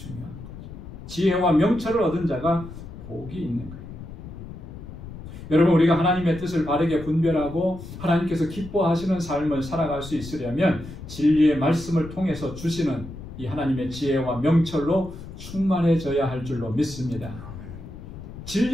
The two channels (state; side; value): noise; left; rumble, 13 dB below the sound